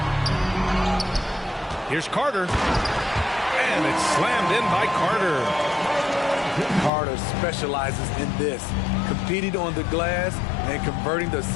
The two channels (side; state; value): right; drops out; at 6.9 s